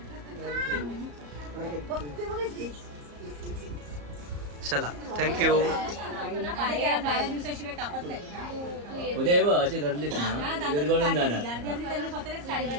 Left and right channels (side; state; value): left; late; 34 ms